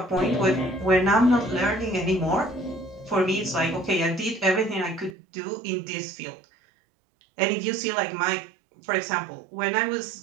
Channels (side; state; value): left; drops out; at 5.2 s